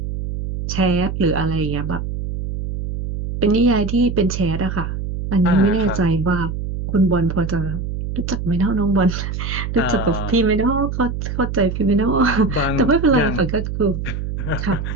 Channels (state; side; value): noise; right; hum, 5 dB below the sound